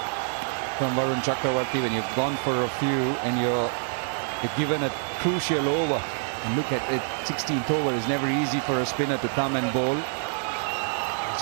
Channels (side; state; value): left; silent; digital silence